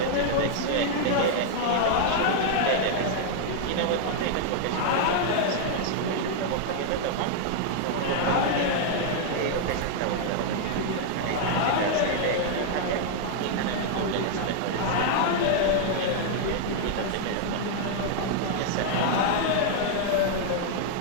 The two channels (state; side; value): different; both; correlation -0.01